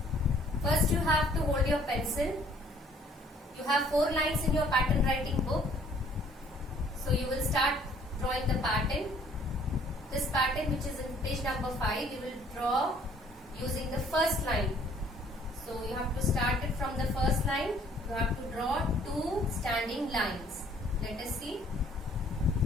First you have to hold your pencil. You have 4 lines in your pattern writing book. So you will start drawing the pattern. This pattern, which is in page number 5, you will draw using the first line. So you have to start it from the first line. You have to draw 2 standing lines. Let us see.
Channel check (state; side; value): normal; both; correlation 0.59